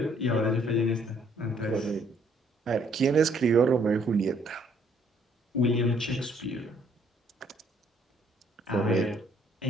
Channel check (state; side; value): normal; both; correlation 0.65